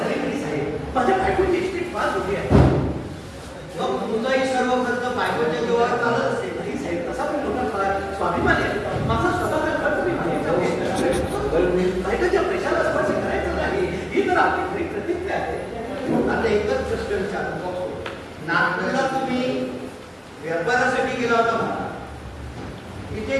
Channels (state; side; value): identical; both; correlation 1.00